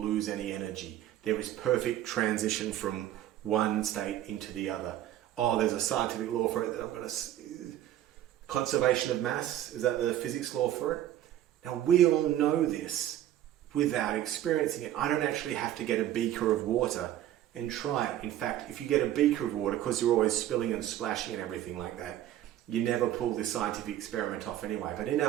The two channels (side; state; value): left; quieter; 12.4 dB